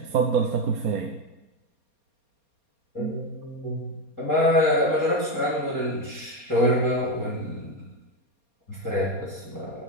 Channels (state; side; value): late; left; 4.3 ms